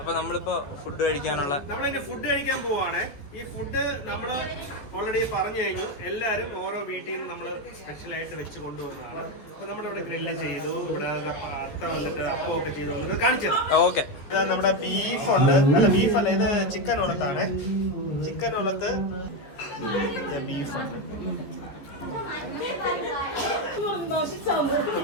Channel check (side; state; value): right; late; 14 ms